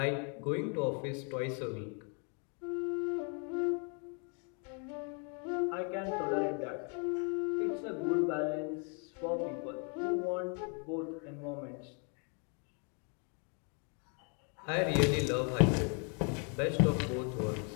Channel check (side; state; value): right; quieter; 38.1 dB